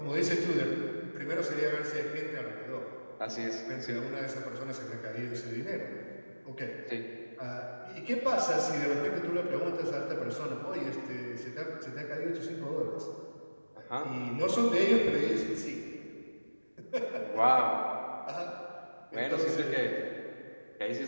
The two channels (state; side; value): inverted; both; correlation -1.00